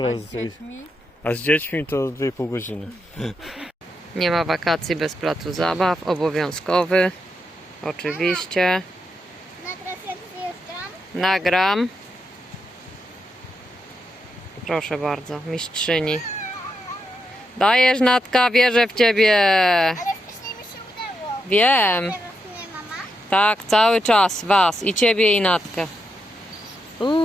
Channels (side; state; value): both; normal; correlation 0.83